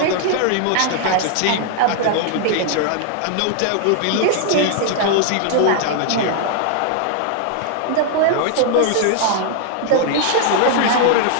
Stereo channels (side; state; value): both; different; correlation 0.00